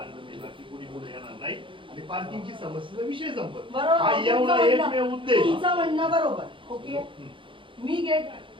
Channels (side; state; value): left; late; 0.25 ms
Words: मी बाकी कुणी पुढे येणार नाही आणि पार्किंगची समस्येचा विषय संपत बरोबर, हा एवढा तुमचं एकमेव म्हणणं- उद्देश तुमचं म्हणणं बरोबर ओके हम्म.